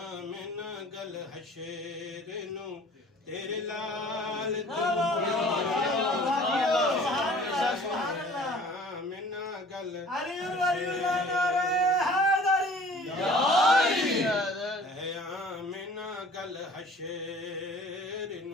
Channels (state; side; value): normal; both; correlation 0.49